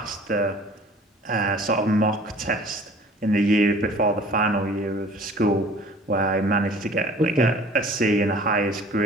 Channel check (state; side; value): normal; both; correlation 0.49